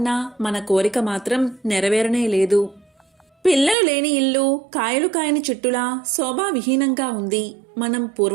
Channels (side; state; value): left; drops out; at 3.8 s